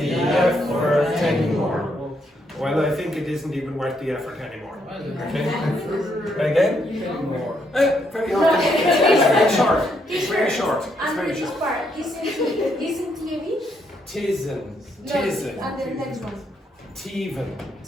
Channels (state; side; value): normal; both; correlation 0.75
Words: effort anymore. Well, I think it isn't even worth the effort anymore. Okay? Again? More. Very often. It's very short. It's very short. It's And very this short. part isn't TV? Tisn't. And the next one. Teven.